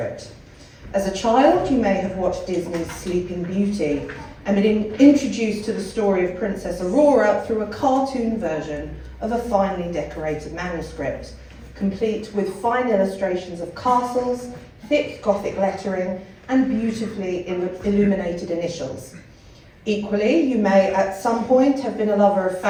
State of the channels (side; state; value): both; identical; correlation 1.00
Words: As a child, you may have watched Disney's Sleeping Beauty and been introduced to the story of Princess Aurora through a cartoon version of a finely decorated manuscript, complete with fine illustrations of castles, thick Gothic lettering, and beautifully illuminated initials. Equally, you may at some point have been a lover of